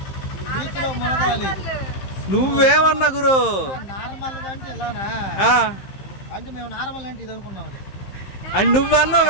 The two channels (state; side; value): late; right; 15 ms